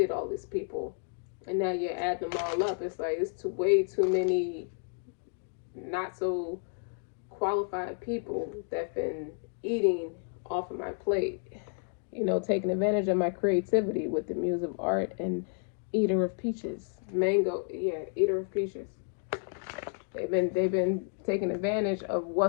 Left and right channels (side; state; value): right; silent; 57 dB below the other